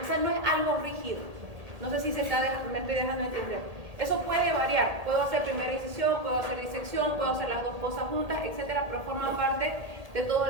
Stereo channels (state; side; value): late; left; 1.8 ms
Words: sea, no es algo rígido. No sé si me estoy dejando entender. Eso puede variar. Puedo hacer primera incisión, puedo hacer disección, puedo hacer las dos cosas juntas, etcétera, pero forma parte de todo